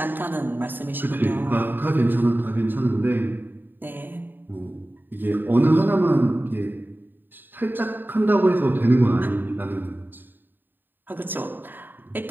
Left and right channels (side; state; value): left; late; 0.093 ms